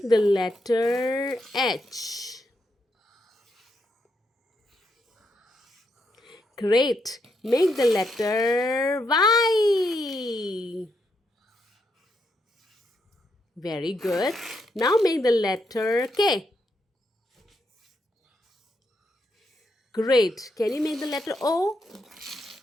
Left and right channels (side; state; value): both; normal; correlation 0.80